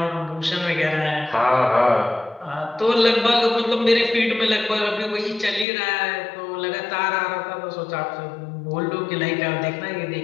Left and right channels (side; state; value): right; drops out; at 5.7 s